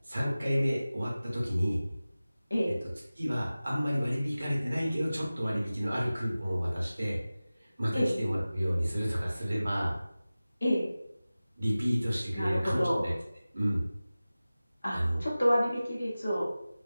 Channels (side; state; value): both; inverted; correlation -0.97